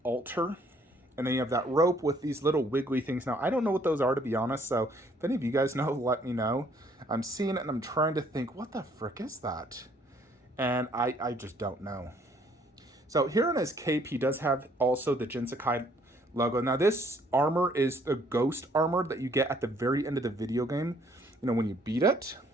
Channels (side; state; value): both; normal; correlation 0.63